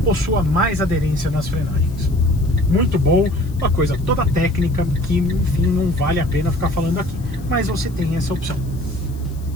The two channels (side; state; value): left; noise; hiss, 25 dB below the sound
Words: possua mais aderência nas frenagens. Muito bom, uma coisa toda técnica que, enfim, não vale a pena ficar falando aqui, mas você tem essa opção.